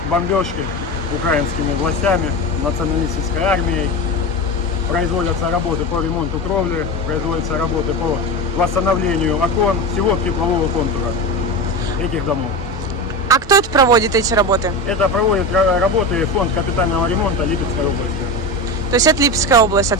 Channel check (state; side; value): normal; both; correlation 0.23